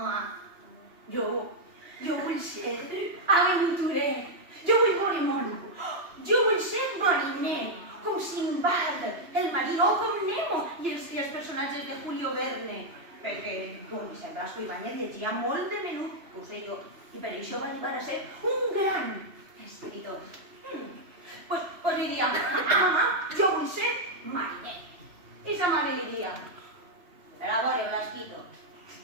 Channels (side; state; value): left; late; 3.0 ms